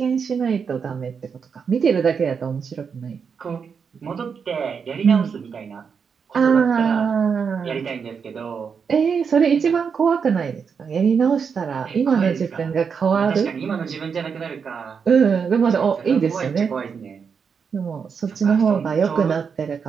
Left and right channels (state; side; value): quieter; left; 6.3 dB